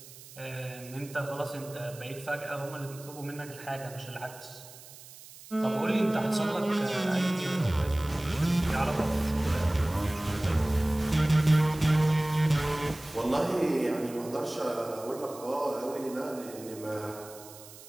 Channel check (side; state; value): right; noise; hiss, 18 dB below the sound